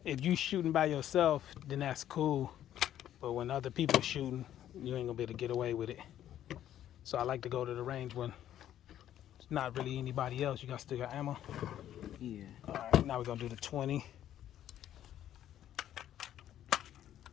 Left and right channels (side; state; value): right; quieter; 11.4 dB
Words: if you shooting by yourself, then that's cool. But when other people shooting, you ain't gonna be able to get away with it. So I like to go to the range when it's not really anybody else. You still got ammo? Yeah. All right, now we're gonna do the 20.